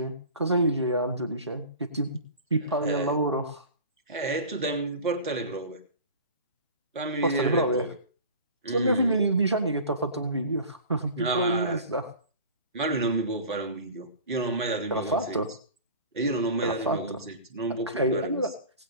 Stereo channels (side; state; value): both; inverted; correlation -0.38